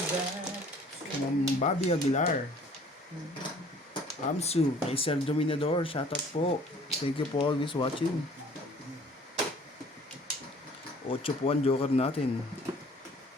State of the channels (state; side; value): normal; both; correlation 0.53